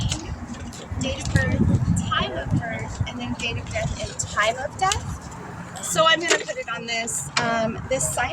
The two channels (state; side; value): identical; both; correlation 1.00